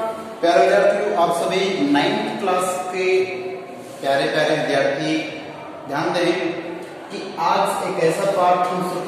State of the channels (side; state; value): both; identical; correlation 1.00